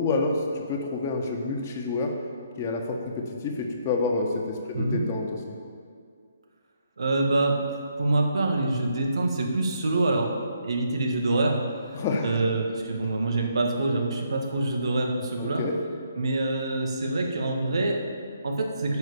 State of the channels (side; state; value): both; inverted; correlation -0.72